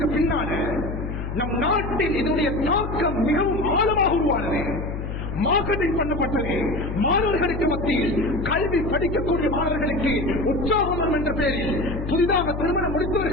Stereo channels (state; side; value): noise; left; hum, 5 dB below the sound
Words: பின்னால நம் நாட்டில் இதனுடைய தாக்கம் மிகவும் ஆழமாக உருவானது. மார்க்கெட்டிங் பண்ணப்பட்டது. மாணவர்களுக்கு மத்தியில், கல்வி படிக்கக்கூடிய மாணவர்களுக்கு உற்சாகம் என்ற பெயரில், புதிதாக திருமணம்